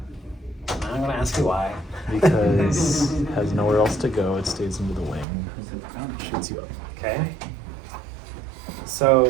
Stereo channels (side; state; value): left; drops out; at 5.2 s